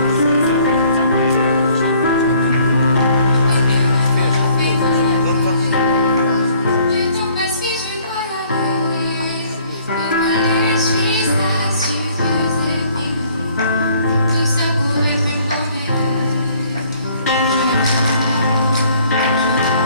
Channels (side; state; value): both; inverted; correlation -0.59